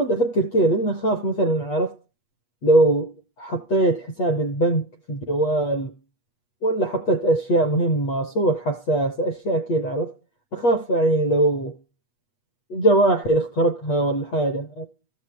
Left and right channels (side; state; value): right; late; 8.3 ms